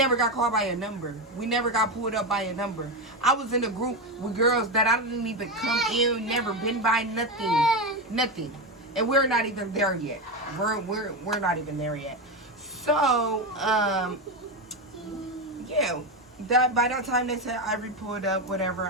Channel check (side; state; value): both; normal; correlation 0.14